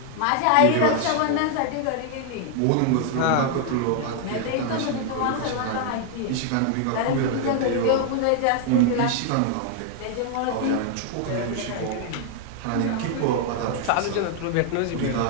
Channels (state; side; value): different; both; correlation 0.00